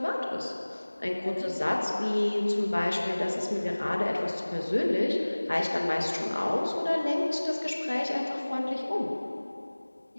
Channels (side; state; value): both; inverted; correlation -1.00